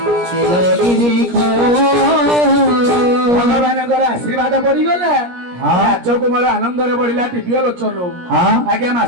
नीलगिरी खो भगवानଙ୍କର आशीर्वाद पड़ी गला राज कुमार आनंद रे बढ़िला टिपियो लोचन आगे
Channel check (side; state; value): left; late; 17 ms